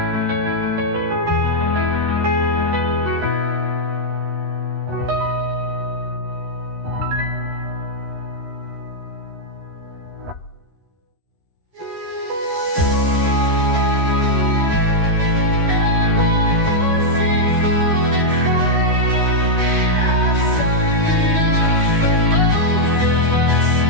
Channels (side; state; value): left; late; 12 ms